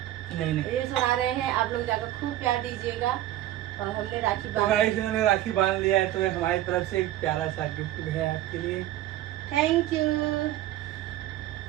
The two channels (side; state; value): left; quieter; 13.8 dB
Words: नहीं रील्स बना रहे हैं, आप लोग जाकर खूब प्यार दीजिएगा। और हमने राखी तो गाइस इन्होंने राखी बांध लिया है, तो हमारी तरफ से एक प्यारा सा गिफ्ट भी है आपके लिए। Thank you.